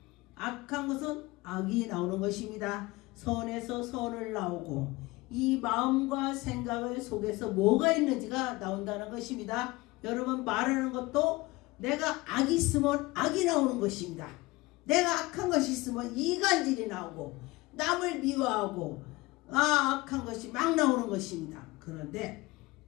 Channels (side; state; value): right; quieter; 21.6 dB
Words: 악한 것은 악이 나오는 것입니다. 선에서 선을 나오고 이 마음과 생각을 속에서 뭐가 있는지가 나온다는 것입니다. 여러분 말하는 것도 내가 악이 있으면 악이 나오는 것입니다. 내가 악한 것이 있으면 이간질이 나오고 남을 미워하고 악한 것이 막 나오는 것입니다. 그런데